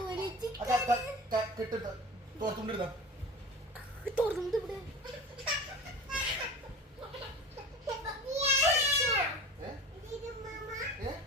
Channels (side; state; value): both; normal; correlation 0.35